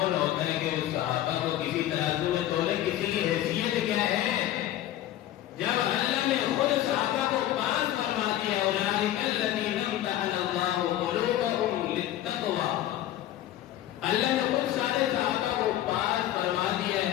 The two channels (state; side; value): quieter; right; 13.1 dB